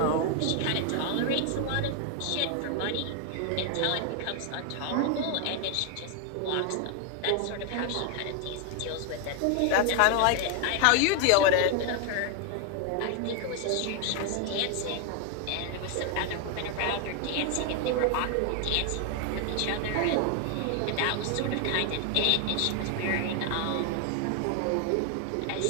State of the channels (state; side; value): different; both; correlation 0.01